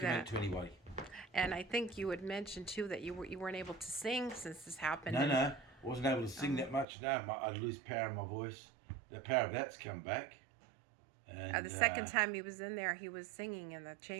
that. it to anybody. And I think you had mentioned too that you weren't able to sing since this happened. No, I wasn't able to sing that much. No, I'd lose power in my voice. The power of that's come back. And The second time he was in there, he was singing in the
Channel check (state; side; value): drops out; left; at 6.9 s